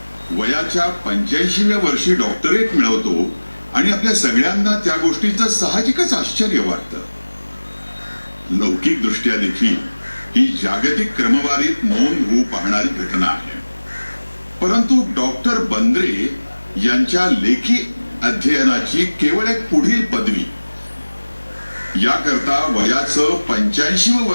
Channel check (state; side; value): inverted; both; correlation -1.00